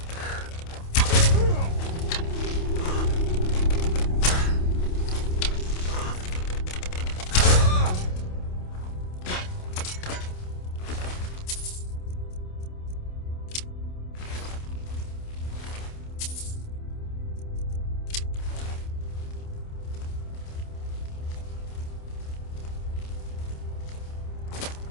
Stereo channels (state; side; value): late; right; 28 ms